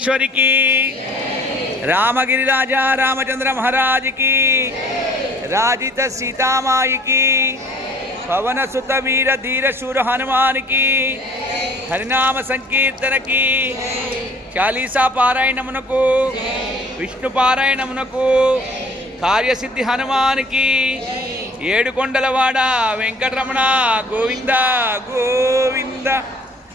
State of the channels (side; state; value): both; normal; correlation 0.53